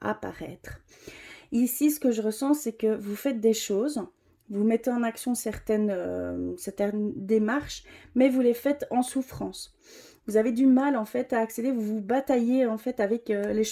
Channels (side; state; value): both; identical; correlation 1.00